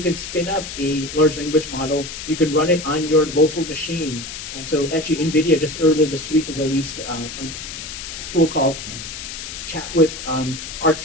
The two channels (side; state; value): left; noise; hiss, 9 dB below the sound